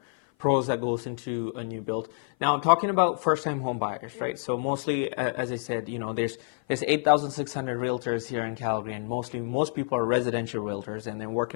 pros that goes into a new build. Now, talking about first-time home buyers, right? So mostly, as I said, there's 8,600 realtors here in Calgary, and most people are residential realtors, and then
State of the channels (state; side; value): silent; right; 55 dB below the other